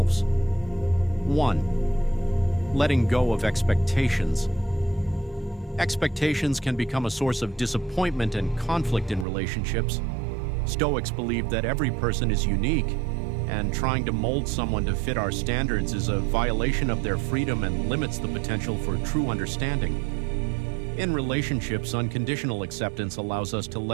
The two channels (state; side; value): drops out; left; at 9.2 s